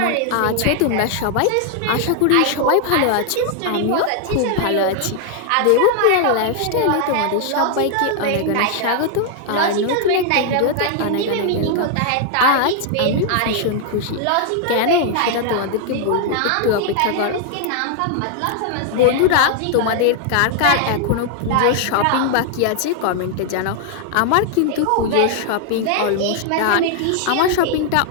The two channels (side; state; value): both; different; correlation 0.00